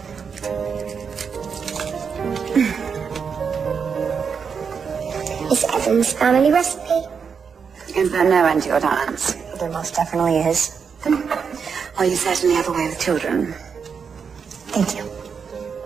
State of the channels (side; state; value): left; quieter; 6.2 dB